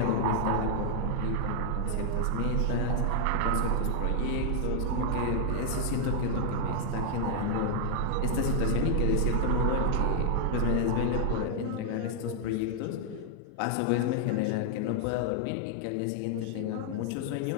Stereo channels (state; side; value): different; both; correlation 0.00